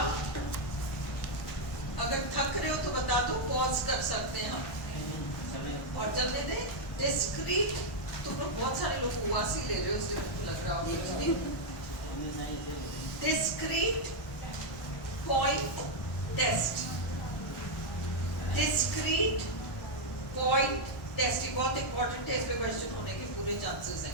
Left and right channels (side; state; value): right; late; 1.1 ms